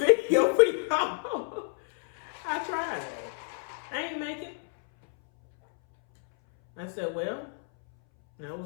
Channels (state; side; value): silent; right; 59 dB below the other